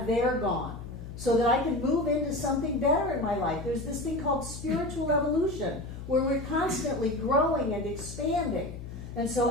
they're gone. So that I can move into something better in my life. There's this thing called spiritual evolution, where we're constantly growing and expanding. And so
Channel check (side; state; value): left; noise; hum, 11 dB below the sound